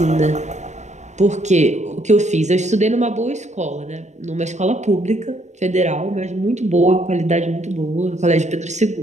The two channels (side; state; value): left; late; 0.34 ms